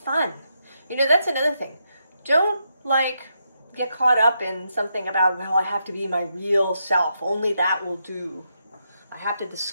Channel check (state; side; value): inverted; both; correlation -0.81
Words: You know, that's another thing. Don't get caught up in something about, well, I have to be my real self. Only that will do. I have to